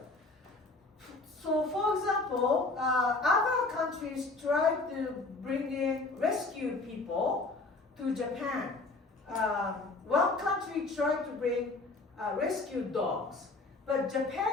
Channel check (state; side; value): quieter; right; 3.4 dB